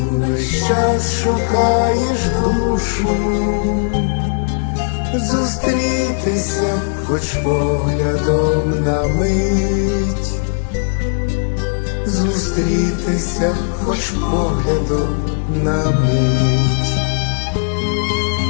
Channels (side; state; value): right; silent; digital silence